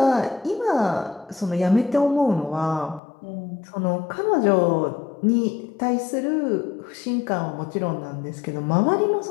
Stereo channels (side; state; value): right; drops out; at 3.0 s